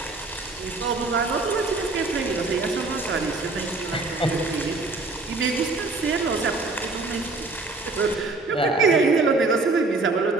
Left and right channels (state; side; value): quieter; left; 3.5 dB